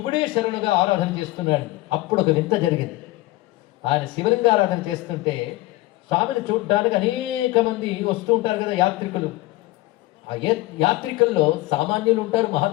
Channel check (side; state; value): right; quieter; 18.7 dB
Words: శరణుగా ఆరాధన చేస్తున్నాడు. అప్పుడు ఒక వింత జరిగింది. ఆయన శివలింగ ఆరాధన చేస్తుంటే స్వామిని చూడ్డానికి అనేక మంది వస్తూ ఉంటారు కదా యాత్రికులు. ఆ యాత్రికుల్లో సామాన్యులు ఉంటారు,